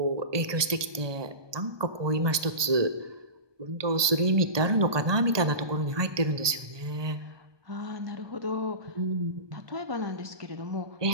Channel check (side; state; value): left; late; 1.2 ms